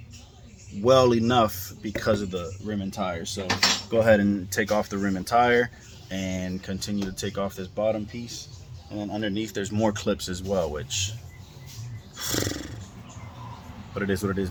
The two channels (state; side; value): identical; both; correlation 1.00